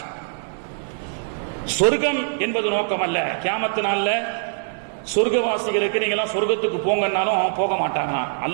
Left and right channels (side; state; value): left; silent; digital silence